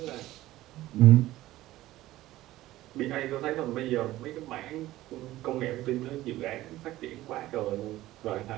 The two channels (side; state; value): left; quieter; 16.0 dB